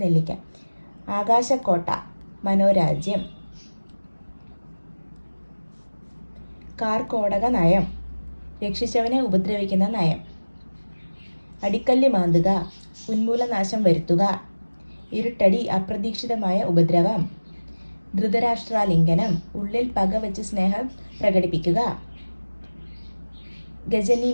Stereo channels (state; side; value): inverted; both; correlation -1.00